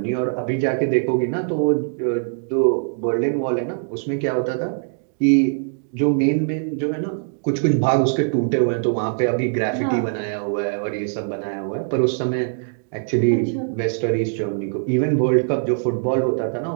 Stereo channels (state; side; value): silent; left; digital silence